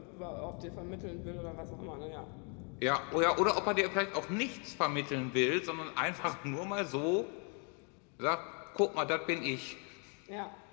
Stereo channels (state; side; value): quieter; right; 37.3 dB